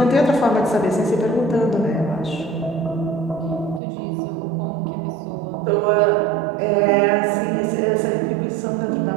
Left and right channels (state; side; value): drops out; left; at 3.8 s